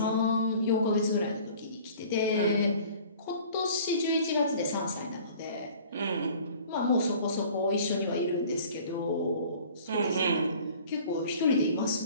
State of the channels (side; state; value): both; inverted; correlation -0.48